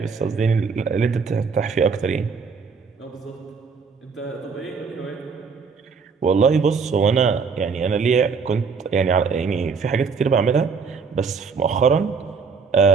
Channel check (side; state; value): left; quieter; 5.4 dB